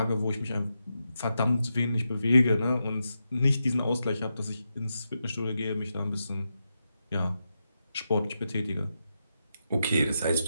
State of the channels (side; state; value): both; inverted; correlation -0.87